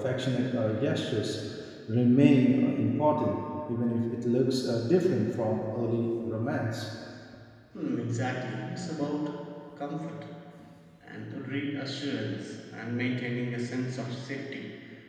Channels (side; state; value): both; identical; correlation 1.00